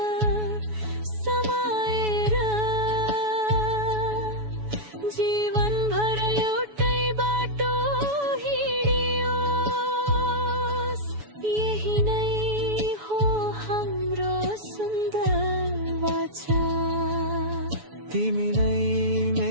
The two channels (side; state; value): left; late; 7.0 ms